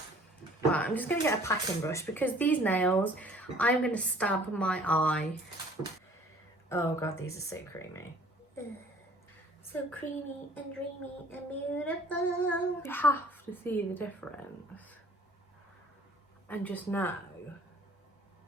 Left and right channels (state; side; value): normal; both; correlation 0.54